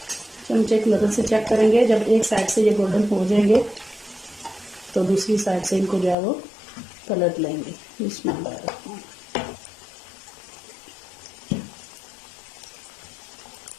चमचे की मदद से चेक करेंगे। जब एक साइड से ये गोल्डन हो जाएंगे तो दूसरी साइड से इनको जो है वो पलट लेंगे। बिस्मिल्लाह।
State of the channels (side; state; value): right; drops out; at 6.2 s